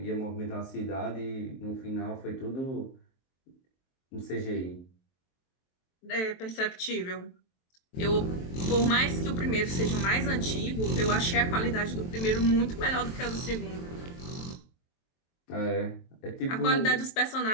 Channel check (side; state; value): right; late; 23 ms